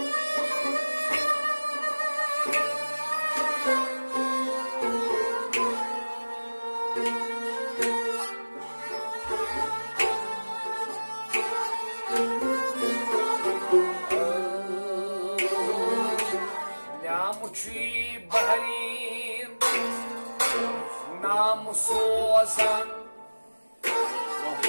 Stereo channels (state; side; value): inverted; both; correlation -1.00